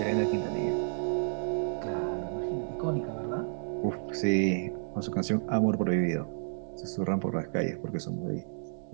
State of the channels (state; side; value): silent; left; digital silence